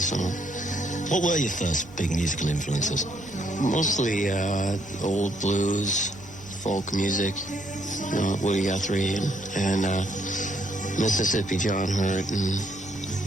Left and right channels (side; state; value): both; normal; correlation 0.70